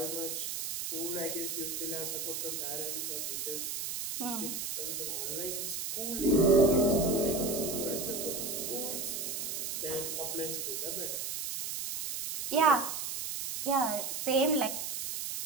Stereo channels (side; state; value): right; noise; hiss, 3 dB below the sound